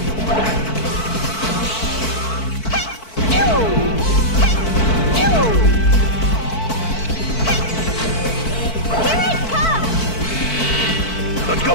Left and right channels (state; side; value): late; right; 4.5 ms